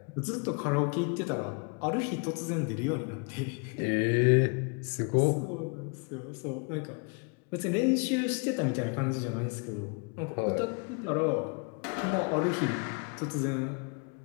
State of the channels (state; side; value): quieter; right; 36.1 dB